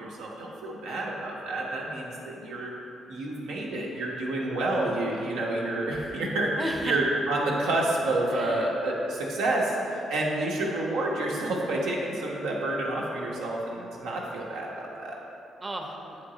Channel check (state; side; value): normal; both; correlation 0.72